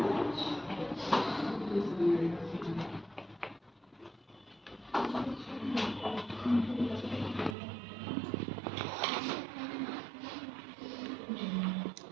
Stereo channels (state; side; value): drops out; left; at 7.6 s